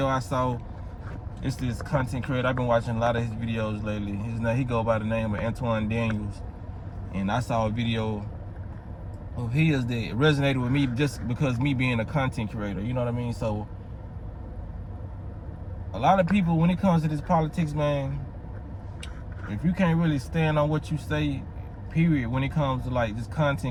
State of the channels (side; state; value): both; identical; correlation 1.00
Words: I saw. It's this content creator. I've been watching a lot of his videos lately. He go by the name of Antoine Daniels, and I saw a video of his that resonated with me just because me being a content creator. You know what I mean? So a lot of people, when it comes to this politics, man, if you can't really stand on what you say, period, when it comes to like just